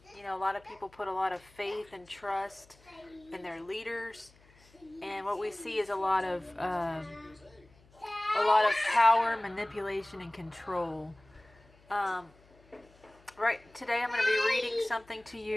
You know, a lot of people put a lot of faith and trust in their leaders, and what we see is a lot of power, manipulation, and control. Um, right today, I'm going to be reading something to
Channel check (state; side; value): noise; left; hum, 28 dB below the sound